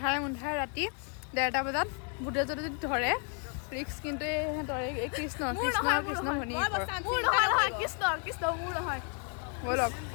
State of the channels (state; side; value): quieter; right; 39.7 dB